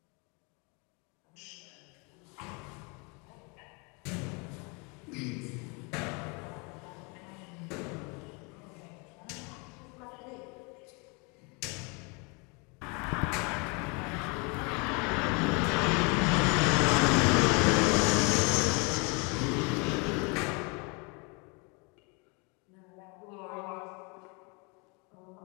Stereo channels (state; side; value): quieter; right; 31.5 dB